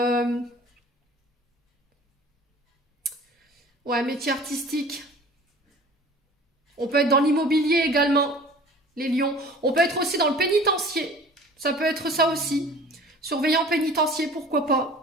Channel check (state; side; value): normal; both; correlation 0.45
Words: Ouais, métier artistique. On peut être dans l'immobilier également, les lions. On peut être aussi dans le pénitencier. Ça peut être ça aussi. Surveillant pénitencier, pourquoi